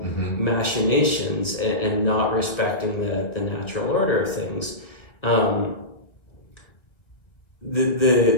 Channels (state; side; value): late; right; 1.8 ms